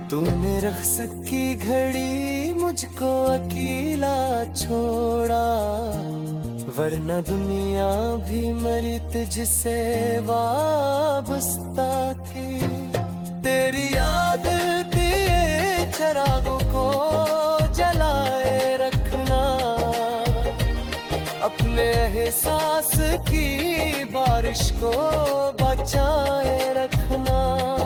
तूने रख्स की घड़ी मुझको अकेला छोड़ा, वरना दुनिया भी मरी तुझसे वाबस्ता थी। तेरी याद के चिरागों को जलाए रखना, अपने एहसास की बारिश को बचाए रखना।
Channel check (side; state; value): both; identical; correlation 1.00